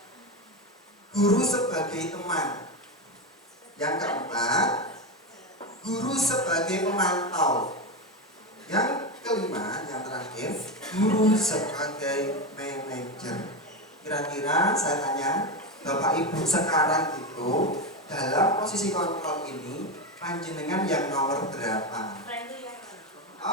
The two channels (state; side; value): normal; both; correlation 0.14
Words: guru sebagai teman. Yang keempat, guru sebagai pemantau. Yang kelima, yang terakhir, guru sebagai manajer. Kira-kira saya tanya, Bapak Ibu sekarang itu dalam posisi kontrol ini panjenengan yang nomor berapa?